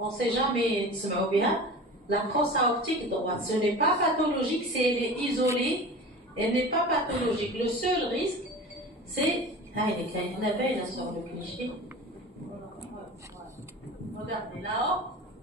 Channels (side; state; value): both; normal; correlation 0.35